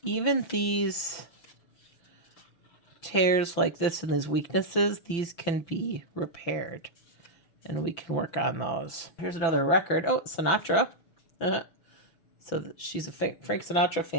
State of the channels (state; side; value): late; right; 6.0 ms